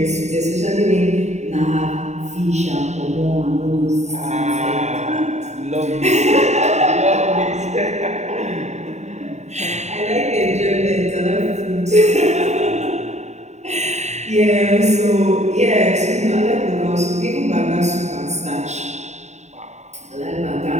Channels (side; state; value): left; late; 0.33 ms